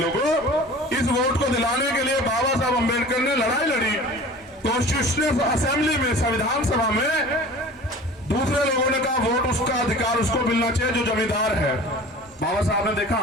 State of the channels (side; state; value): both; normal; correlation 0.41